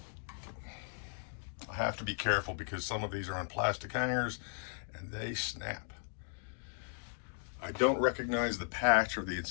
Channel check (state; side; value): silent; right; 53 dB below the other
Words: I have to be careful because some of these are on plastic hangers and they snap. I don't recognize the patch or the